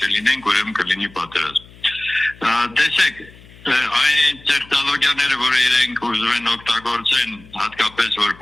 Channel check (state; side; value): noise; left; hum, 23 dB below the sound